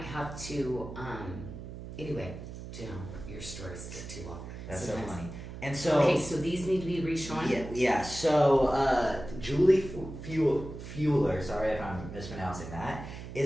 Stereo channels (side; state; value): right; noise; hum, 11 dB below the sound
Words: have to, anyway, you know, your stories get too long. that's sometimes. so funny. And so Okay, so these need to be reshown? Yeah. So Julie Fueler, sorry if I'm mispronouncing that,